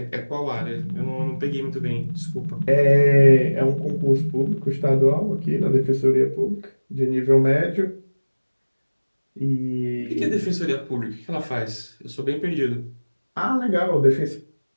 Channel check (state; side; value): inverted; both; correlation -1.00